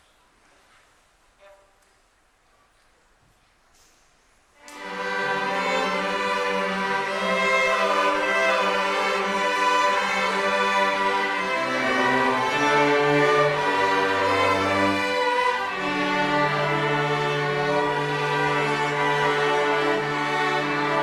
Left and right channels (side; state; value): both; identical; correlation 1.00